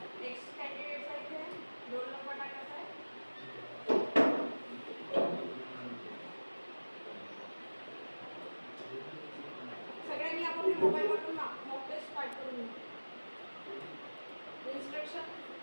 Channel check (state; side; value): inverted; both; correlation -1.00